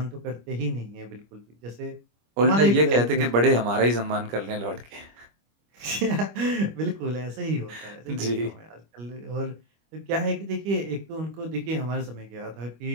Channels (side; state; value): left; late; 25 ms